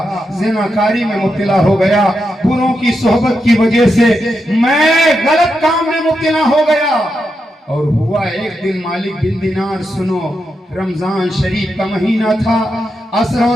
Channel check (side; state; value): both; normal; correlation 0.85